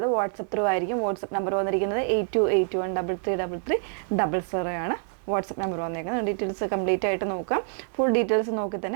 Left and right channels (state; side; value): silent; left; 58 dB below the other